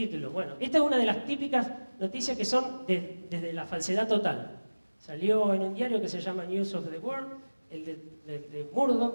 Bueno, esta es una de las típicas noticias que son desde la falsedad total. Salió en un diario que se llama News of the World, el de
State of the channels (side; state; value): both; inverted; correlation -1.00